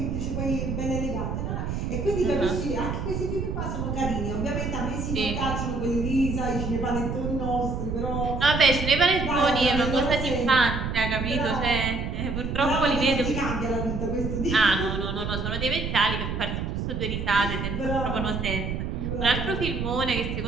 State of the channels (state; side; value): noise; right; rumble, 3 dB below the sound